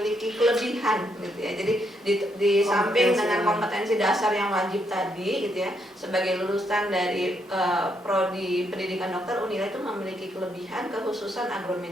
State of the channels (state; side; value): normal; both; correlation 0.76